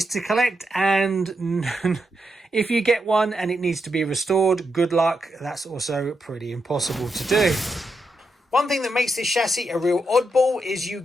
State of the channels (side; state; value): both; normal; correlation 0.84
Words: to collect, and if you get one and it needs to be restored, good luck. That's also pretty impossible to do. One thing that makes this chassis a real oddball is you